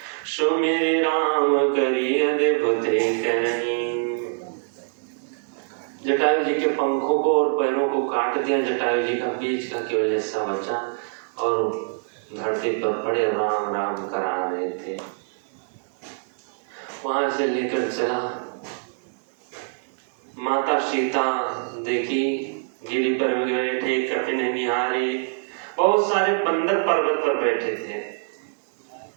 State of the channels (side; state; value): left; silent; 62 dB below the other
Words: सो मेरे राम करिए अद्भुत करनी। जटायु जी के पंखों को और पैरों को काट दिया, जटायु जी का बीच का केवल हिस्सा बचा और धरती पर पड़े राम राम करा रहे थे। वहां से लेकर चला, माता सीता देखी गिरी पर बैठे कपिन निहारी, बहुत सारे बंदर पर्वत पर बैठे थे।